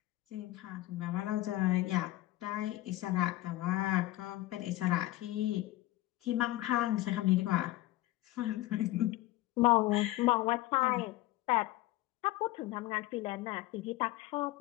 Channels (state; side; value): quieter; right; 17.0 dB